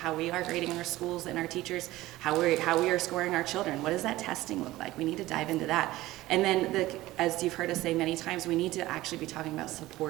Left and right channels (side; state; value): left; quieter; 17.2 dB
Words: we are grading our schools and our teachers, how we are scoring our children. What does that testing look like? We need to dive into that. And then, as you've heard us say many times, we need to actually be talking about